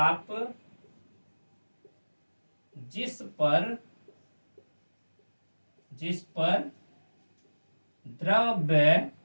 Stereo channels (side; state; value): both; inverted; correlation -1.00